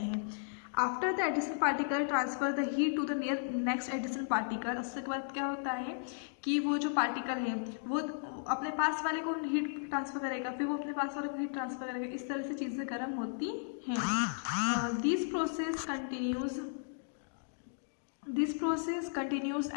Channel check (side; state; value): right; silent; digital silence